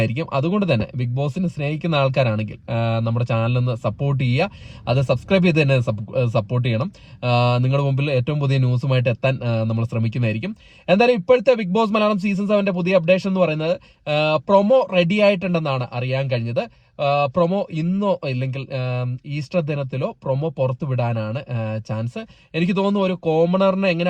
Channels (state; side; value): identical; both; correlation 1.00